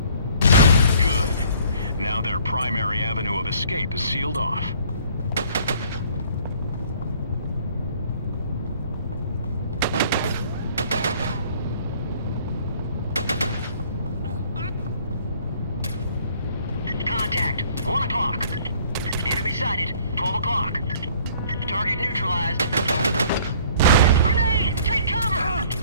Good. Now their primary avenue of escape is sealed off. Contact. 1 o'clock. Enemy sighted. 12 o'clock. Target neutralized. Grenade! Take cover!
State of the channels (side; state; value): both; inverted; correlation -0.56